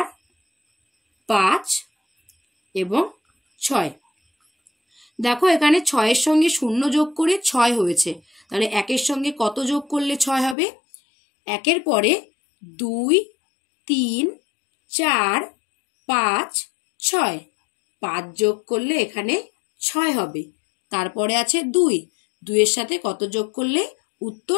5 এবং 6। দেখো এখানে 6-এর সঙ্গে 0 যোগ করে 6 হয়েছে। তাহলে 1-এর সঙ্গে কত যোগ করলে 6 হবে? 1-এর পরে 2, 3, 4, 5, 6, 5 যোগ করলে এখানে 6 হবে। তারপরে আছে 2, 2-এর সাথে কত যোগ করলে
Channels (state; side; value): drops out; right; at 10.6 s